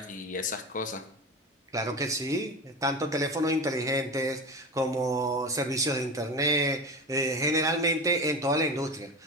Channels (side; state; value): both; normal; correlation 0.27